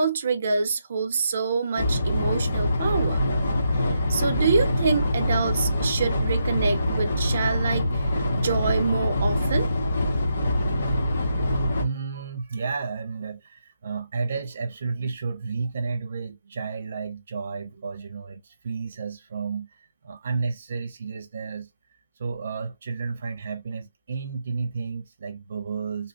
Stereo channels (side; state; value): both; inverted; correlation -0.81